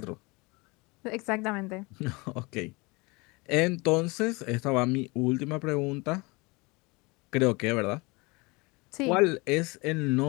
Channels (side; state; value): right; quieter; 26.3 dB